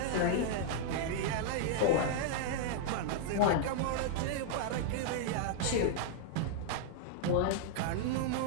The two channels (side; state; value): both; different; correlation -0.01